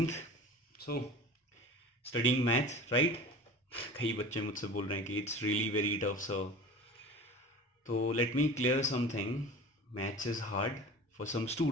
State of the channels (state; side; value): normal; both; correlation 0.38